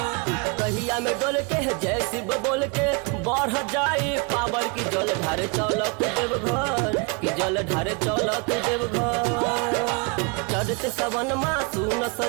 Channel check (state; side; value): quieter; left; 31.6 dB